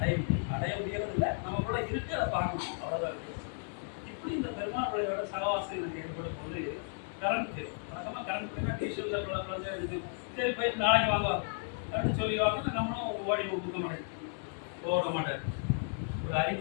அடைய முடியறது இல்லை, நம்ம கூட இருக்கு, அதை பார்க்கணும், அவ்வளோதான் இருக்கு. இப்படி இந்த பெருமாள் பிள்ளையோட சகவாசம் எனக்கு ஏற்படும் போது கரண்ட் தேவை. வழக்கமாக கரண்ட் போயினா டியூஷனில் குழந்தை எடுத்து சரி போயிட்டு நாளைக்கு வாங்க அப்படின்னு சொல்லிடுவாங்க. நம்மளும் ஓடி கொடுக்க மாட்டேன், ஓட மாட்டார். ஒரு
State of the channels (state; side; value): silent; right; 55 dB below the other